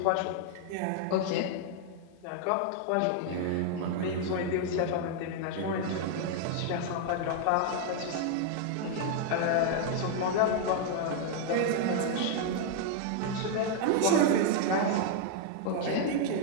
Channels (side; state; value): both; different; correlation 0.00